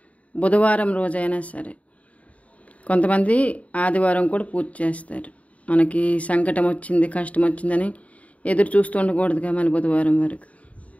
బుధవారం రోజైనా సరే. కొంతమంది ఆదివారం కూడా పూజ చేస్తారు. మనకి సంకటం వచ్చింది, కష్టం వచ్చిందని ఎదురు చూస్తూ ఉండకూడదుగా, మన బుధవారం వరకు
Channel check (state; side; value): late; right; 0.067 ms